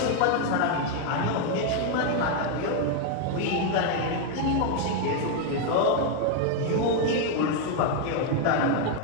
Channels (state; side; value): different; both; correlation 0.00